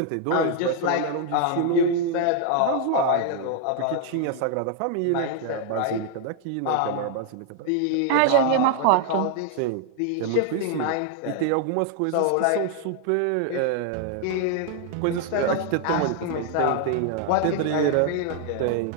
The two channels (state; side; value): different; both; correlation 0.00